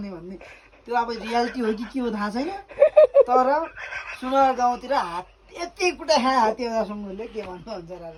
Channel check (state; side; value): identical; both; correlation 1.00